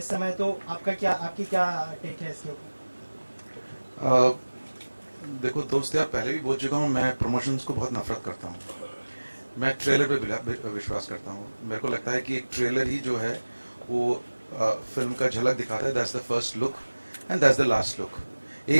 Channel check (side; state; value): both; inverted; correlation -1.00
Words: समय, तो आपकी क्या टेक है इसके ऊपर? देखो दोस्त यार, पहले भी बोल चुका हूँ, मैं प्रमोशंस को बहुत नफरत करता हूँ। मैं ट्रेलर पे विश्वास करता हूँ। मेरे को लगता है कि एक ट्रेलर ही जो है वो फिल्म का झलक दिखाता है। That's the first look and that's the last look.